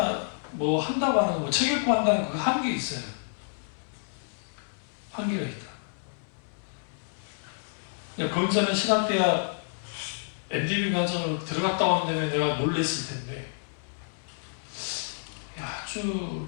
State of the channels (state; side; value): silent; right; 58 dB below the other